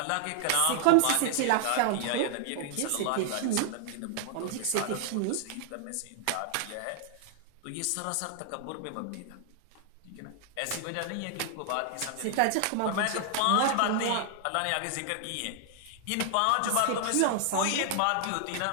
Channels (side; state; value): both; different; correlation -0.01